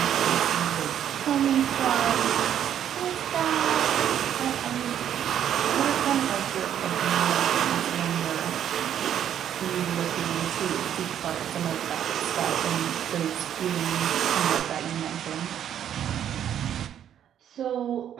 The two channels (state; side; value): quieter; left; 9.9 dB